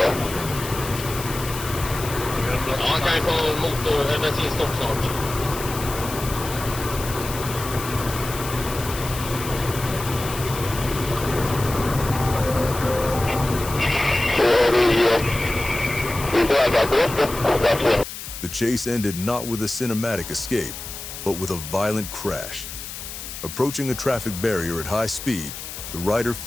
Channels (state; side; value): noise; left; hiss, 10 dB below the sound